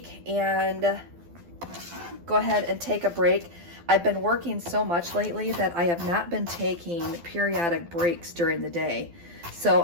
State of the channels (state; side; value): late; left; 12 ms